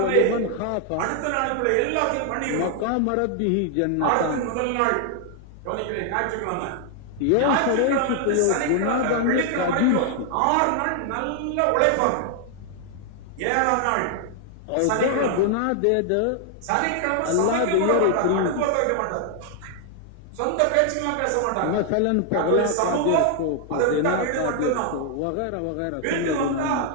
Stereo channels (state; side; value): different; both; correlation 0.00